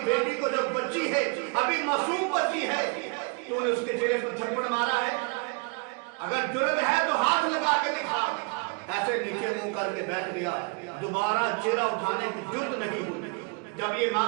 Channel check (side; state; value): left; quieter; 33.5 dB